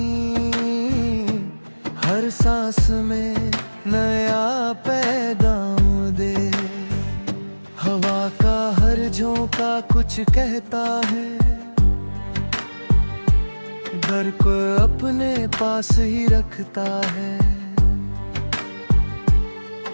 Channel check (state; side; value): inverted; both; correlation -1.00